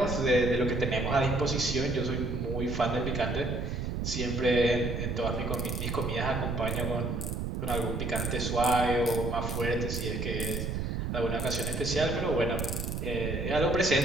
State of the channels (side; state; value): right; noise; rumble, 2 dB below the sound